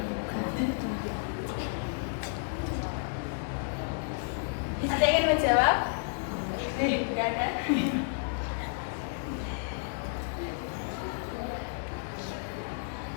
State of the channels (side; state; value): right; silent; digital silence